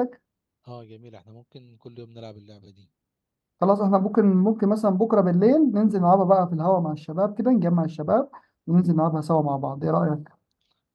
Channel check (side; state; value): both; identical; correlation 1.00